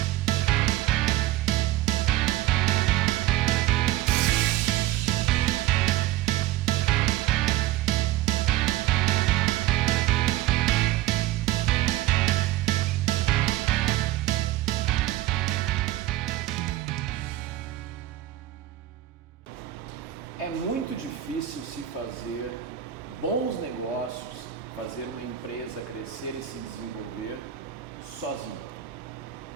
É muito difícil se fazer bons negócios, fazer uma empresa crescer e se desenvolver sozinho.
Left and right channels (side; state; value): left; quieter; 14.1 dB